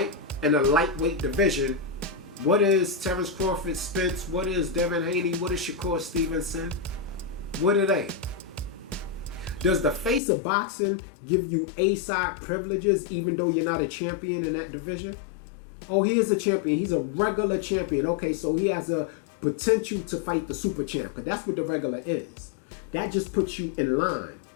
in a lightweight division, what is Terrence Crawford, Spence? What is Devin Haney? What is Shakur Stevenson? What are they? Does the face of boxing give you A-side privileges even though you're not a champion in that division? Oh, he is a champion. He's a regular champion. Okay, so he has a potential to fight the super champ, because that's what the regular is. That just puts you in line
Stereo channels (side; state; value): right; drops out; at 10.2 s